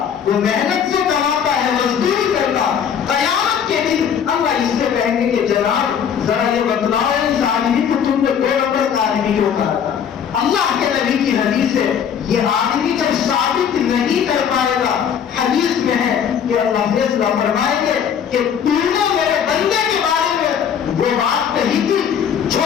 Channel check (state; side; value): quieter; right; 8.0 dB